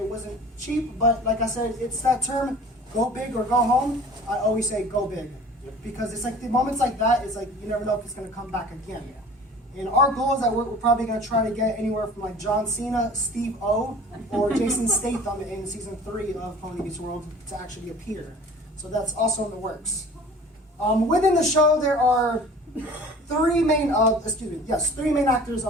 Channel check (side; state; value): both; normal; correlation 0.44